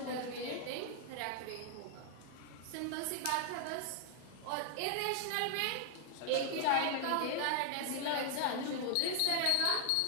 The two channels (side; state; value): both; different; correlation 0.00